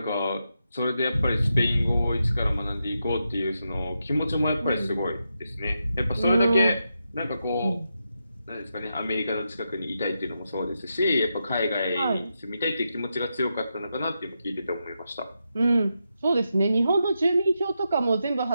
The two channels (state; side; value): inverted; both; correlation -0.86